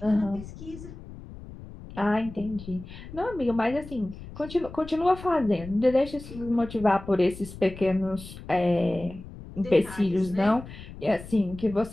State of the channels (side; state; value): left; noise; rumble, 14 dB below the sound